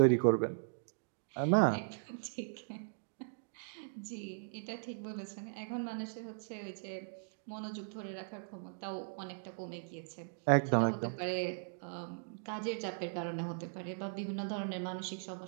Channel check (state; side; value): silent; left; digital silence